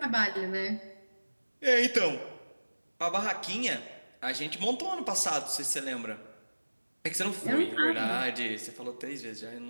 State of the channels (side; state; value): both; inverted; correlation -1.00